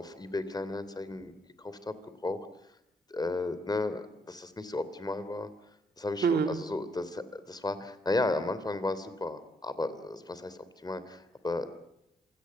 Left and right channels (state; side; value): normal; both; correlation 0.72